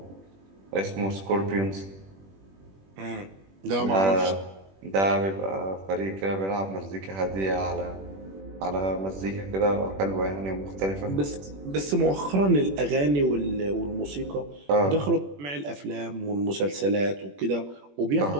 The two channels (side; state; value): left; late; 21 ms